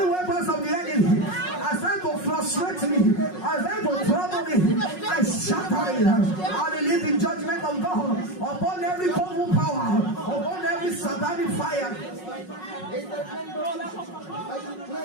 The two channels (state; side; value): late; right; 5.5 ms